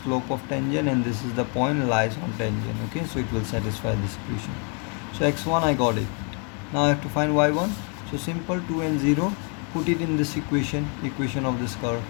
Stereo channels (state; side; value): quieter; right; 38.4 dB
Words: of tangent, and this is the point lies on tangent. Okay, so it will satisfy this equation. So x1 I got it. Now I have to find y1. So simple, 2 and 0, put it in this equation of this curve,